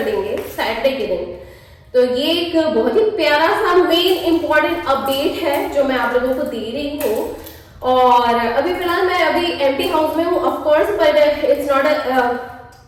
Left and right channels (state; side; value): identical; both; correlation 1.00